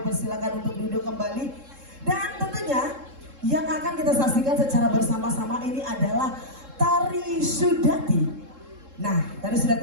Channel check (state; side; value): late; left; 3.7 ms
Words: persilakan untuk duduk kembali. Dan tentunya yang akan kita saksikan secara bersama-sama ini adalah Tari Sudati. Nah, Tari